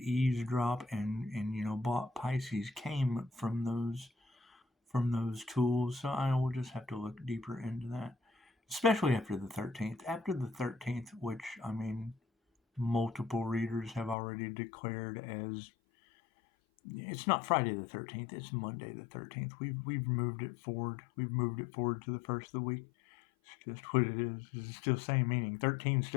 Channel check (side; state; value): right; drops out; at 14.2 s